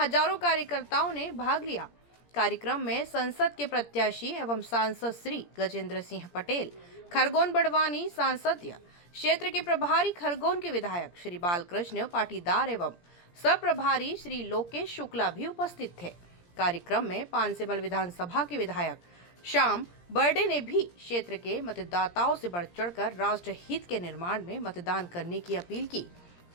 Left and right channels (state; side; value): late; right; 17 ms